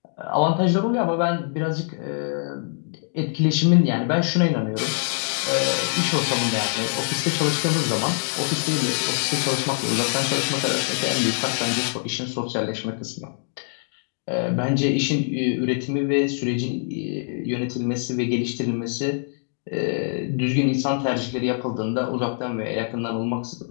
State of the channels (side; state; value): right; silent; digital silence